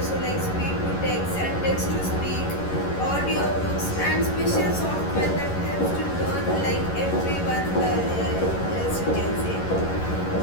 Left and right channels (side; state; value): right; late; 11 ms